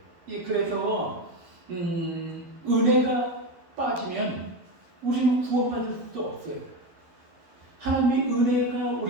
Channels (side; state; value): left; late; 12 ms